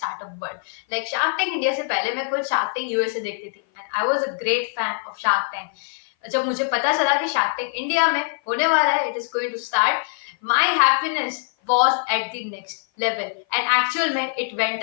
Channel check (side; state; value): right; silent; 56 dB below the other